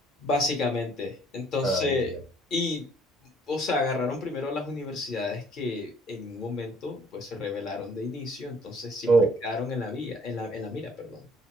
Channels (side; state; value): both; normal; correlation 0.59